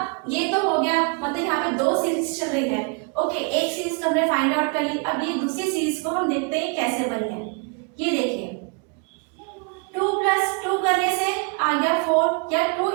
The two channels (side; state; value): left; quieter; 33.9 dB